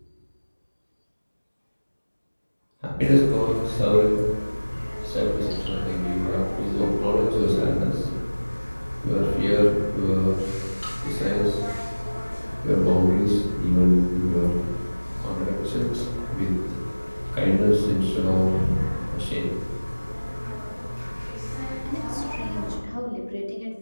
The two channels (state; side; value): inverted; both; correlation -1.00